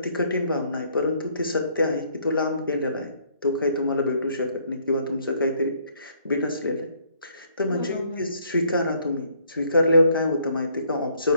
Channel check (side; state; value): both; inverted; correlation -0.65